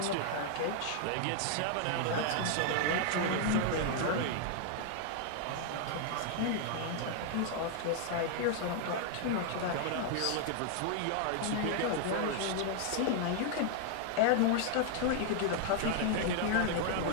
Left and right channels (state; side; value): different; both; correlation 0.00